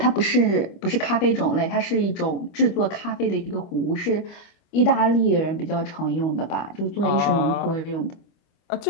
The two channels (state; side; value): late; right; 25 ms